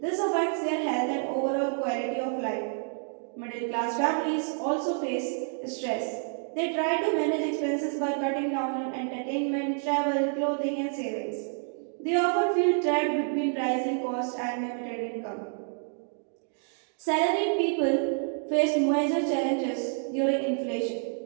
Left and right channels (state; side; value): silent; left; 59 dB below the other